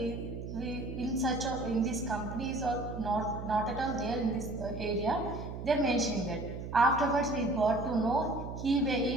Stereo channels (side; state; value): right; noise; hum, 8 dB below the sound